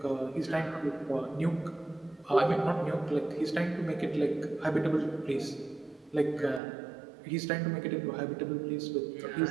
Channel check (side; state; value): left; drops out; at 6.6 s